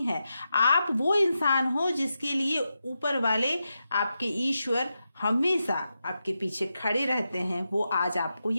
है। आप वो इंसान हो जिसके लिए ऊपर वाले आपके ईश्वर हमेशा आपके पीछे खड़े रहते हैं, वो आज आपको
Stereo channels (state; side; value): inverted; both; correlation -0.88